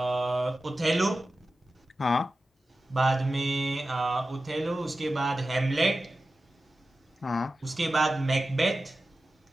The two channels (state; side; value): normal; both; correlation 0.94